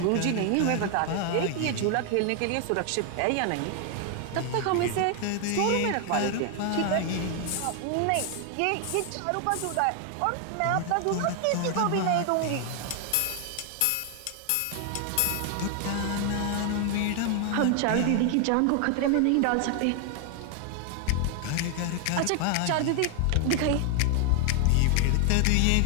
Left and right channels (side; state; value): both; different; correlation 0.00